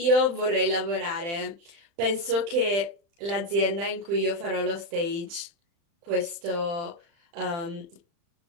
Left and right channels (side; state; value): left; late; 35 ms